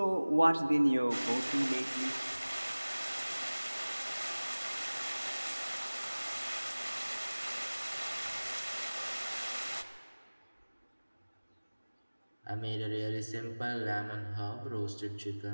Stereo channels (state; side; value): inverted; both; correlation -1.00